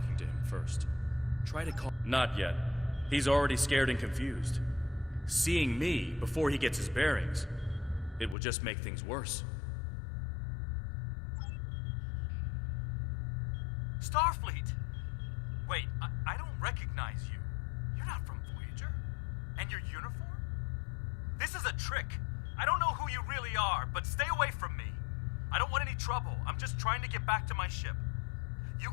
to him first. Try to call... Not yet. He's already scared and confused. Seeing me before he gets his bearings, it will just make things worse. Starfleet! Wait, I don't recognize you. You're not from Voyager. And your uniform? This is a trick. I don't know who you really are, but stay away from me. I don't want any trouble. I'm just trying to get back to my ship. You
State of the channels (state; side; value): drops out; right; at 8.3 s